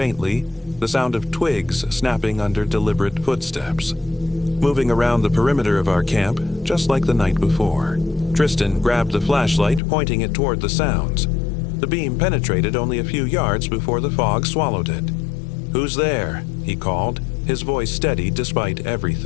the sound of twigs snapping under deliberate footsteps. Moving around the perimeter of our camp, just like the night before. Tristan grabbed the flashlight, pointing it toward the sounds. The beam penetrated only a few yards before the fog swallowed it. "Who's there?" he called, his voice steady despite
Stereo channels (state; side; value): drops out; right; at 9.8 s